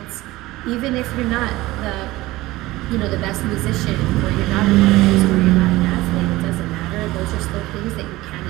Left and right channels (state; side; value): quieter; left; 18.5 dB